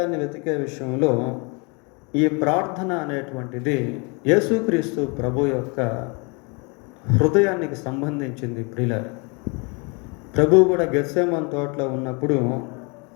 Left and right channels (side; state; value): right; quieter; 31.7 dB